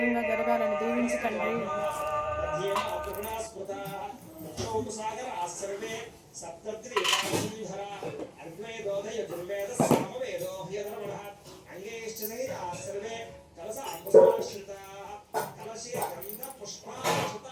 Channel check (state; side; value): identical; both; correlation 1.00